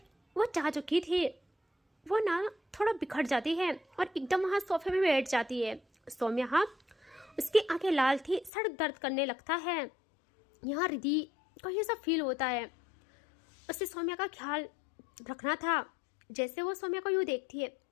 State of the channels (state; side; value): drops out; right; at 8.5 s